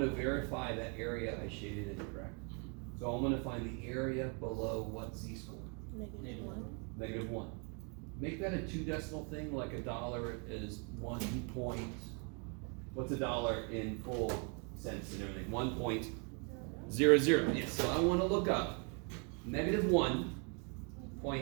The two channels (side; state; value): left; quieter; 36.4 dB